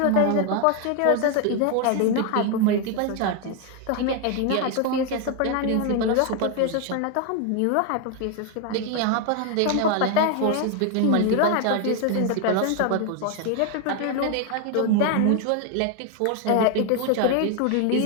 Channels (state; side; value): different; both; correlation 0.01